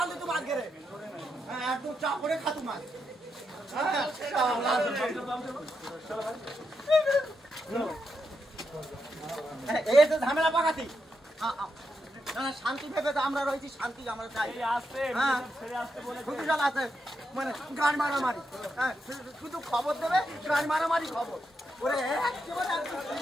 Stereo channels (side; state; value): both; normal; correlation 0.83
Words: তো বাদ গেলে একদম চা করে খাতু মাছ। এই তো ঝামেলা পাকাতি শান্তি ভেবে তো আমরা রয়েছি, শান্তি আমরা চাই। আছে মানে গান মারামারি, শুধু খবর দেবে গান মারামারি খবর ওরে